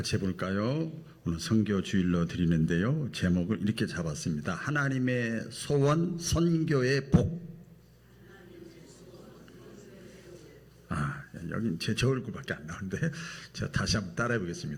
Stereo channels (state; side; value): identical; both; correlation 1.00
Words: 해볼까요? 오늘 선교 주일로 드리는데요. 제목을 이렇게 잡았습니다. 하나님의 소원, 선교의 복. 여긴 제 얼굴밖에 안 나오는데 제가 다시 한번 따라해